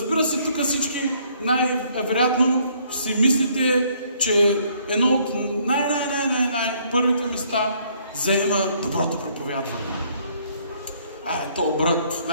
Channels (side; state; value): both; inverted; correlation -0.65